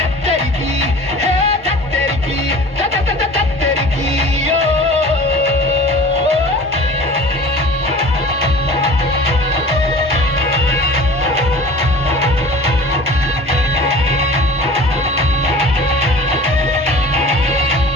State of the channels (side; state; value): both; normal; correlation 0.42